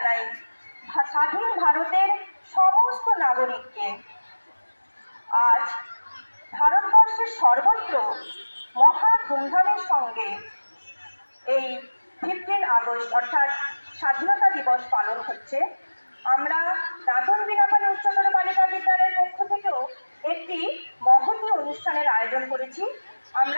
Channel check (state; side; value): inverted; both; correlation -1.00